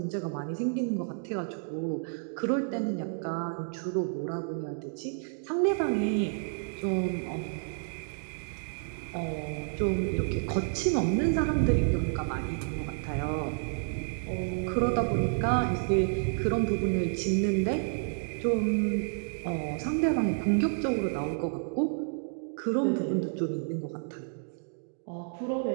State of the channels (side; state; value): left; silent; digital silence